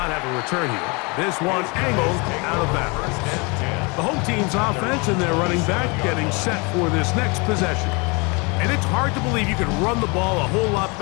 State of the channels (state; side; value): quieter; right; 29.5 dB